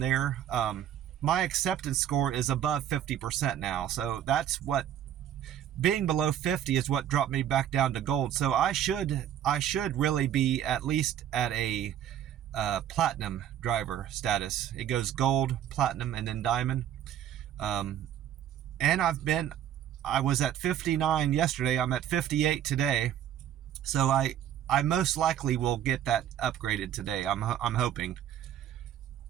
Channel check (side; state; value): left; quieter; 10.6 dB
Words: My acceptance score is above 50% now. So that's what, being below 50 is what dropped me back down to gold. So I should really be at least at a platinum driver status. It goes gold, platinum, and then diamond. And I was at 59 yesterday. I'm at 58 today. So I most likely will get that upgraded today. I'm hoping.